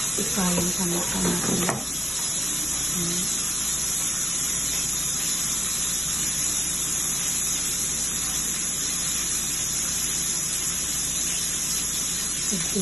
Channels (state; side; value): normal; both; correlation 0.90